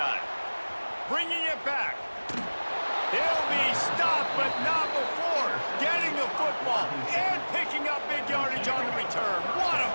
Bringing it back. He'll be stopped, but not before getting the football and picking up big yardage on the return. What a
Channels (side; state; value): both; inverted; correlation -1.00